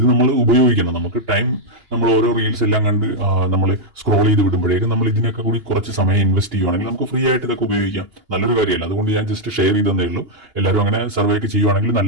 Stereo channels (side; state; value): left; late; 2.9 ms